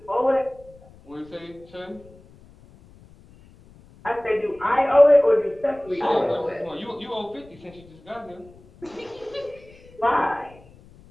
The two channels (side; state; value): left; noise; rumble, 24 dB below the sound